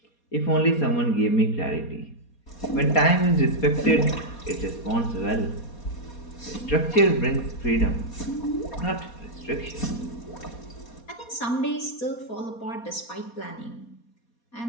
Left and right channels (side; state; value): right; late; 4.2 ms